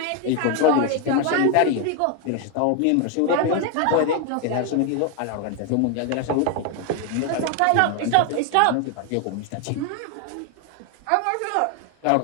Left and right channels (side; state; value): both; different; correlation 0.01